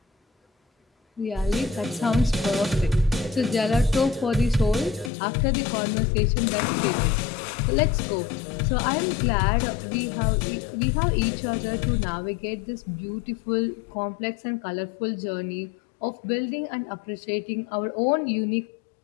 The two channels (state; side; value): drops out; right; at 5.1 s